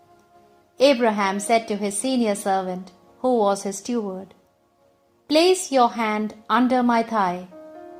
Abraham said to his senior servant, who was his steward, "Place your hand under my thigh,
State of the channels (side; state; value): both; identical; correlation 1.00